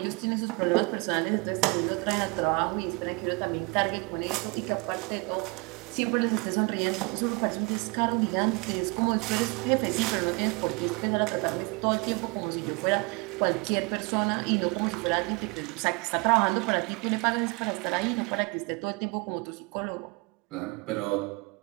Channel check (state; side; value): quieter; left; 28.7 dB